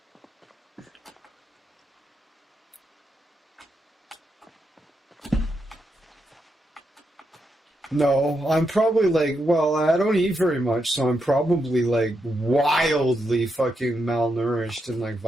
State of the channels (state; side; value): normal; both; correlation 0.83